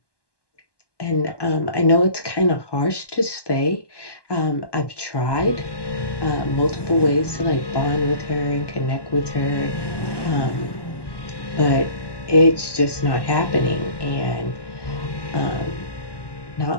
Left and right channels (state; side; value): late; right; 1.1 ms